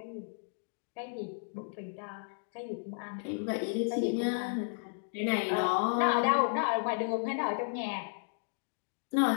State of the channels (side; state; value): right; silent; digital silence